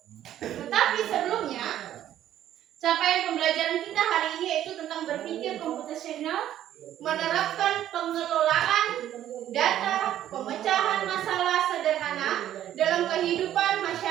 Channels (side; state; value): left; quieter; 11.8 dB